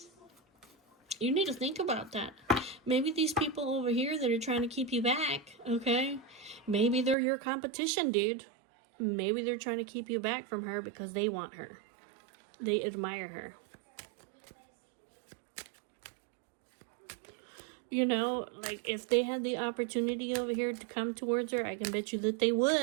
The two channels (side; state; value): left; drops out; at 7.2 s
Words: You need to think about that. Maybe these people over here that are trying to keep you back, okay? Maybe they're your competition, dude. Maybe they're trying to keep you back from her because they want her. They admire her. You know, like, if they had the opportunity over here to come towards her, I can bet you that they